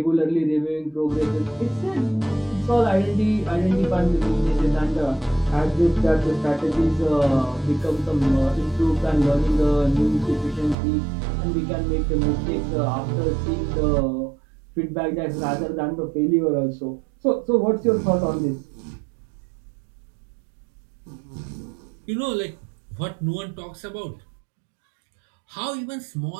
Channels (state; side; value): drops out; left; at 10.8 s